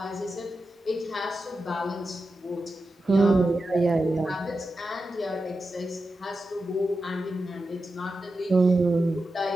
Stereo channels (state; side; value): normal; both; correlation 0.90